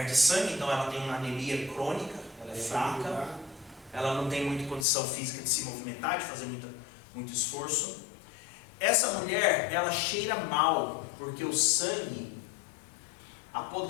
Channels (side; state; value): right; drops out; at 4.9 s